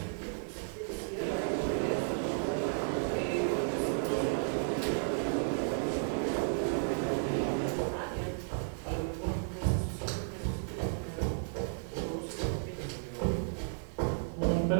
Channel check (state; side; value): silent; left; digital silence